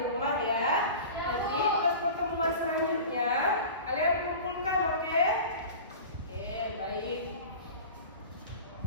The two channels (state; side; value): inverted; both; correlation -0.35